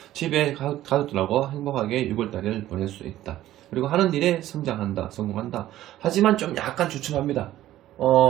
집에 가족들하고 행복하게 6월달을 보낼 수 있다. 그리고 하는 일에 성장한다. 성공한다. 하지만 좀 약간 주춤합니다.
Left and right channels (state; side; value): quieter; left; 14.0 dB